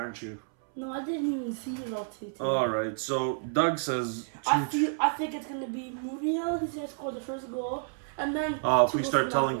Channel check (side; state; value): left; silent; 58 dB below the other